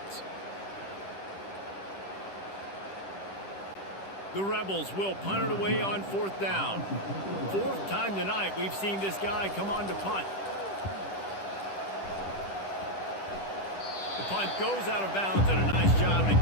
The Rebels will punt it away on fourth down. Fourth time tonight we've seen this guy come on to punt. The punt goes out of bounds, and a nice job to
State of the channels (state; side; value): late; right; 10 ms